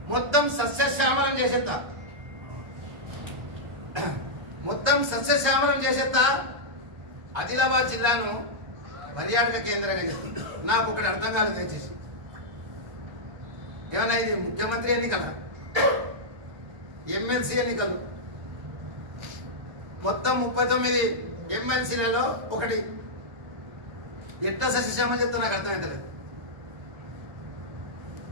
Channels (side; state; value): left; late; 1.3 ms